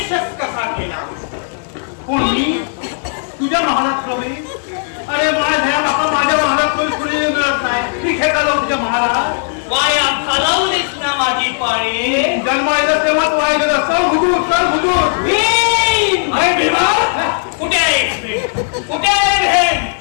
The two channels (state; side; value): silent; right; digital silence